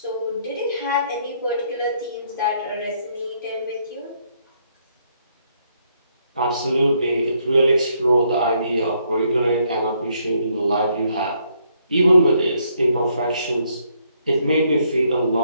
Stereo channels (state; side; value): inverted; both; correlation -0.72